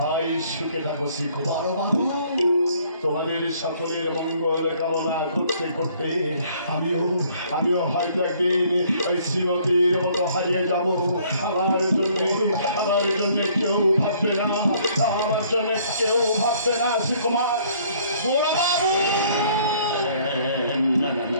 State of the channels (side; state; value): both; inverted; correlation -0.61